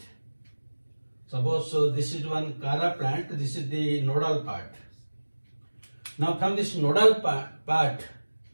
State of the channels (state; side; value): inverted; both; correlation -1.00